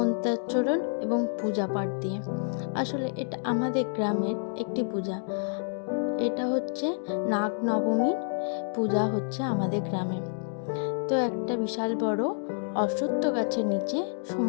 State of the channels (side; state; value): right; silent; digital silence